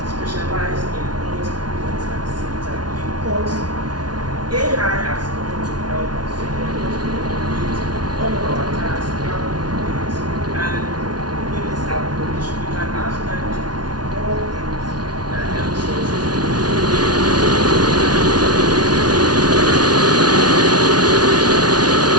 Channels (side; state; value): left; late; 0.69 ms